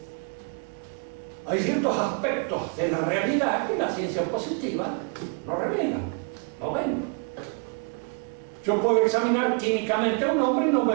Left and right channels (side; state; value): left; quieter; 36.9 dB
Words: hay ciertos aspectos de la realidad que la ciencia positiva no revela. No ven. Yo puedo examinar químicamente a un hombre y no